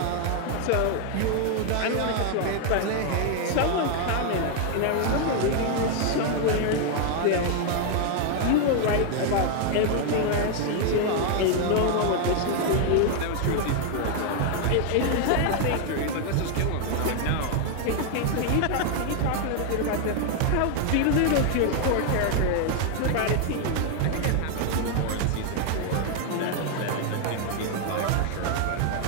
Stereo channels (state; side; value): different; both; correlation 0.00